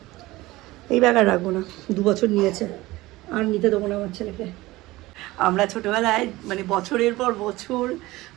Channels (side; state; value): left; quieter; 19.0 dB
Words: এই ব্যাগ আর রাখবো না, 2 বছর নিয়েছে, আর নিতে দেবো না আমার ছেলেকে। আমরা ছোটোবেলায় মানে বছরের পর বছর,